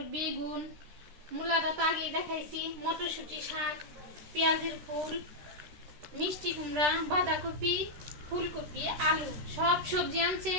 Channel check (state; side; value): late; left; 13 ms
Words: বেগুন, মূলাটা তো আগেই দেখাইছি, মটরশুঁটি, শাক, পেঁয়াজের ফুল, মিষ্টি কুমড়া, বাঁধাকপি, ফুলকপি, আলু, সব সবজি আনছে।